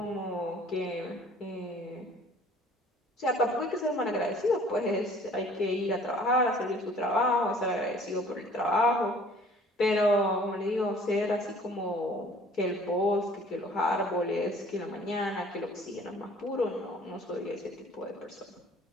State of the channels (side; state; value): both; normal; correlation 0.53